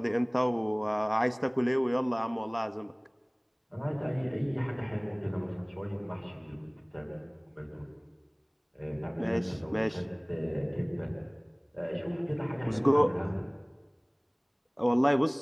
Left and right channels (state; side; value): identical; both; correlation 1.00